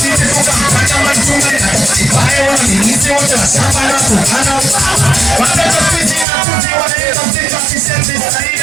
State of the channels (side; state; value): left; drops out; at 6.2 s